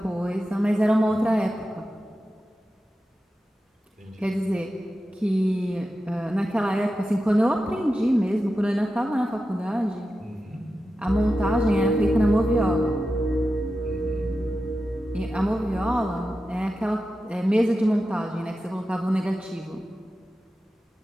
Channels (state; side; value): normal; both; correlation 0.92